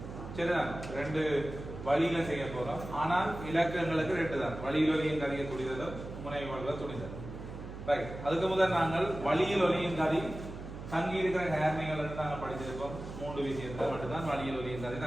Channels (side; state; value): right; noise; hum, 10 dB below the sound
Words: சரிதான், ரெண்டு வழியில செய்ய போறோம். ஆனால் இலக்கங்களுக்கு ரெண்டு தான், வழியில் ஒலியின் கதையை துணிதலும் முனைவு வலுவ துணிதல். ரைட், அதுக்கு முதல் நாங்கள் வழியில் ஒலியின் கதை தங்கி இருக்கிற நேர்மைகள் நாங்கள் படிச்சிருக்கோம். மூன்று விஷயத்தை மட்டும்தான் வழியில் ஒலியின் கதை